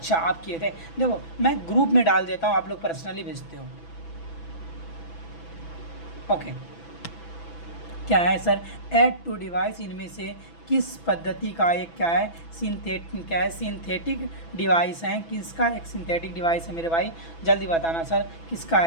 आप किए थे, देखो मैं ग्रुप में डाल देता हूँ, आप लोग पर्सनली भेजते हो। ओके, क्या है सर, ऐड टू डिवाइस इनमें से किस पद्धति का एक क्या है सिंथेटिक डिवाइस है? किसका एक सिंथेटिक डिवाइस है मेरे भाई? जल्दी बताना सर, किसका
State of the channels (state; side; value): late; right; 6.0 ms